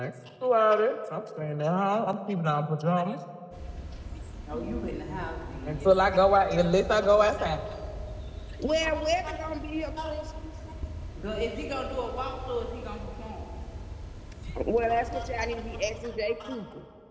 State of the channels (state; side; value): identical; both; correlation 1.00